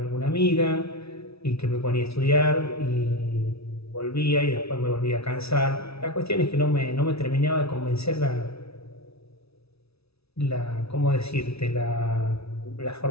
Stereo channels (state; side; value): late; right; 0.78 ms